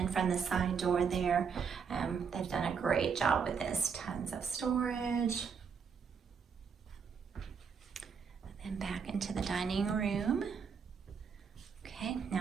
from the side door there. They've done a great job with this. Tons of storage. And back into the dining room. Okay, now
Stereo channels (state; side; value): quieter; left; 6.3 dB